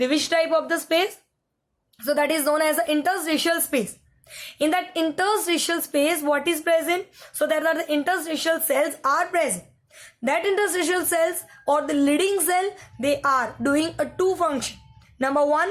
which type of the space? So that is known as the interstitial space. In that interstitial space, what is present? So there are the interstitial cells are present. That interstitial cells, or the leading cell, they are doing a 2 function. Number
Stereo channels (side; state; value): both; identical; correlation 1.00